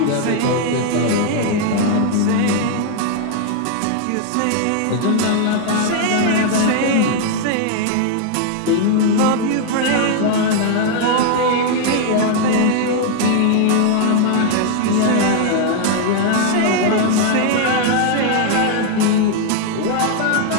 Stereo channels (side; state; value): both; different; correlation 0.00